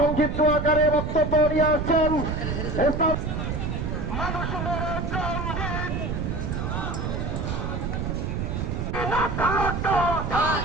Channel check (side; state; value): right; noise; rumble, 2 dB below the sound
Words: আকারে বক্তব্য নিয়ে আসছেন